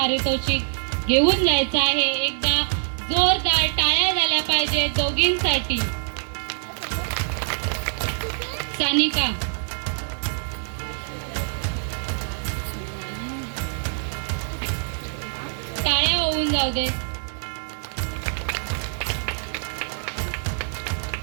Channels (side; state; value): left; silent; digital silence